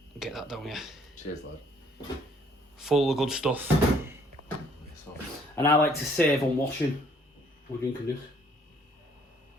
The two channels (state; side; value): normal; both; correlation 0.63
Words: Get that down here. Cheers, lad. Full of good stuff. And I like to save on washing. We're drinking this.